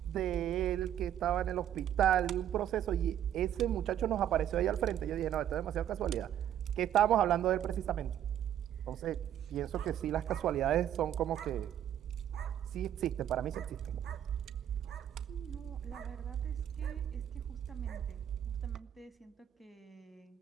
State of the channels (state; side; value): quieter; left; 10.6 dB